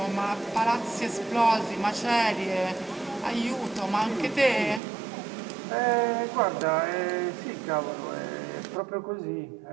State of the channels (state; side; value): drops out; left; at 4.8 s